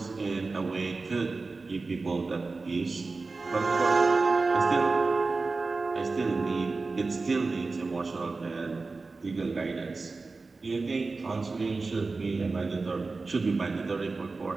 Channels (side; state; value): left; quieter; 3.8 dB